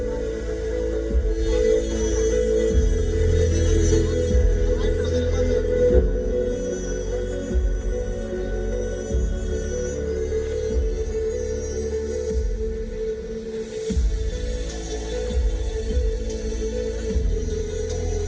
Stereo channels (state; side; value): identical; both; correlation 1.00